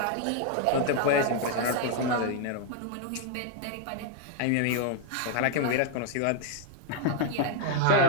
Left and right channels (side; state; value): both; different; correlation 0.00